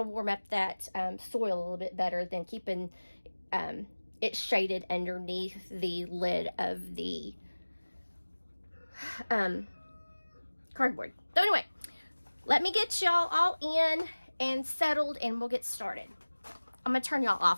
warm up that soil a little bit better than keeping it shaded underneath the lid of the cardboard. So anyway, let me get y'all all in and settled, and we'll get started. I'm gonna turn y'all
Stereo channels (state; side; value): inverted; both; correlation -1.00